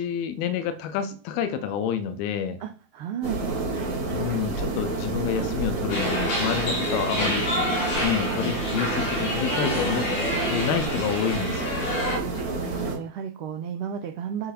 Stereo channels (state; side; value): late; right; 12 ms